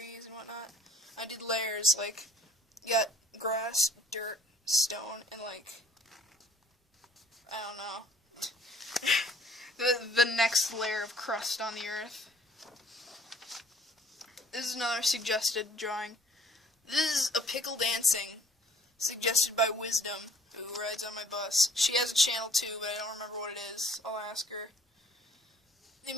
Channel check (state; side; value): normal; both; correlation 0.56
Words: and whatnot. I did layers, like, you got grass, dirt, stone, and, like, I don't know, the next layer of crust on the earth. This is another suggested drawing. This is a pickle dancing, suggested by Wisdom, who rides on my bus. She has a channel too, but I don't remember what it is. I'll ask her. The